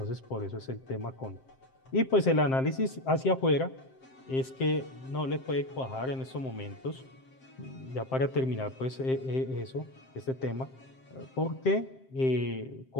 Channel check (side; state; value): right; late; 7.6 ms